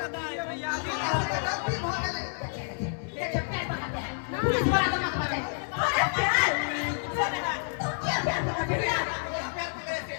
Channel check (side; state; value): right; silent; 58 dB below the other